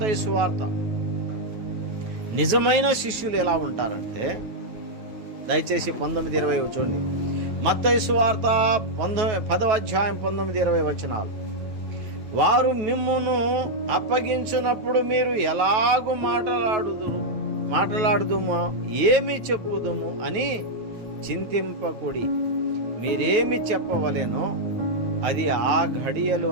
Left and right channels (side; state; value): left; late; 9.3 ms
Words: సువార్త. నిజమైన శిష్యులు ఎలా ఉంటారంటే, దయచేసి 19-20 చూడండి. మత్తయి సువార్త 10వ అధ్యాయం 19-20 వచనాలు. వారు మిమ్మును అప్పగించినప్పుడు మీరు ఎలాగూ మాట్లాడుదుమో ఏమి చెప్పుదుము అని చింతింపకుడి. మీరేమి చెప్పవలెనో అది ఆ